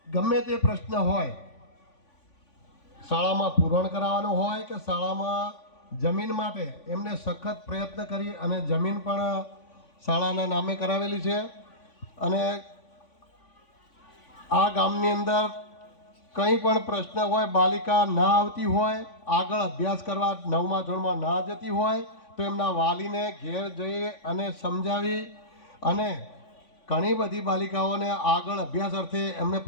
ગમે તે પ્રશ્ન હોય, શાળામાં પૂરણ કરાવવાનું હોય કે શાળામાં જમીન માટે એમને સખત પ્રયત્ન કરી અને જમીન પણ શાળાના નામે કરાવેલી છે. અને આ ગામની અંદર કંઈ પણ પ્રશ્ન હોય, બાલિકા ના આવતી હોય, આગળ અભ્યાસ કરવા 9મા ધોરણમાં ના જતી હોય તો એમના વાલીને ઘેર જઈ અને સમજાવી અને ઘણી બધી બાલિકાઓને આગળ અભ્યાસ અર્થે એમને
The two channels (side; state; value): right; late; 3.5 ms